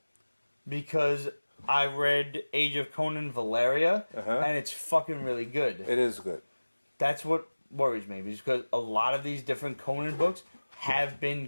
Because I read Age of Conan Valeria, and it's fucking really good. It is good. That's what worries me, because a lot of these different Conan books have been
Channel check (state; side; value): inverted; both; correlation -1.00